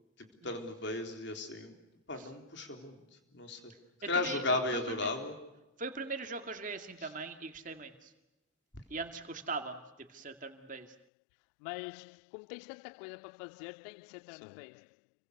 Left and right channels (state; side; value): drops out; right; at 11.0 s